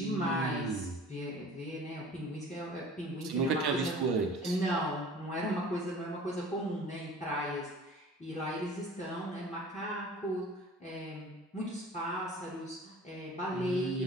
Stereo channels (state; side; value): normal; both; correlation 0.44